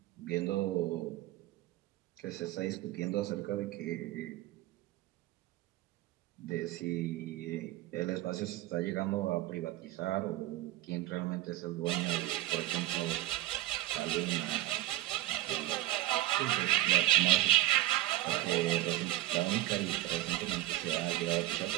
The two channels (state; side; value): quieter; left; 15.9 dB